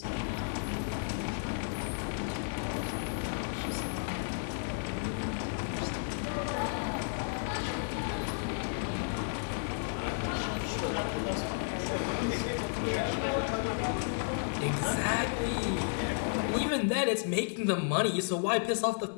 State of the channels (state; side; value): silent; right; digital silence